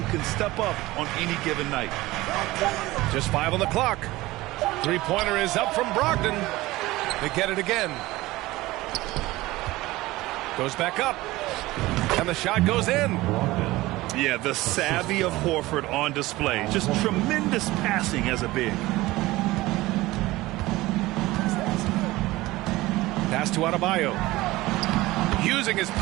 can step up on any given night. Just 5 on the clock. Three-pointer is up from Brogdon. They get it again. Goes back up. And the shot goes in. Yeah, the savvy of Horford on display. Just tremendous passing as a big. Pass to Adebayo. Using his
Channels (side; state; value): left; quieter; 18.8 dB